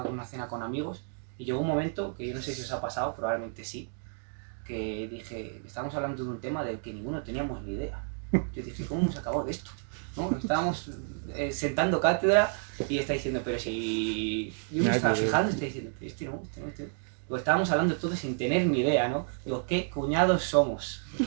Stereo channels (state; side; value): silent; left; 57 dB below the other